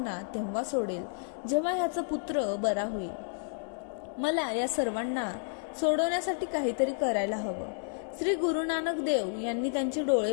तेव्हा सोडेल जेव्हा ह्याचा पुत्र बरा होईल. मला या सर्वांना सोडवण्यासाठी काहीतरी करायला हवं. श्री गुरु नानक देव यांनी त्यांचे डोळे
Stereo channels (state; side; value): silent; right; digital silence